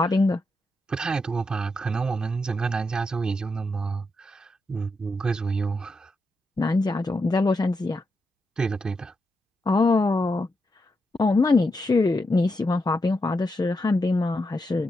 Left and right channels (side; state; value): both; normal; correlation 0.84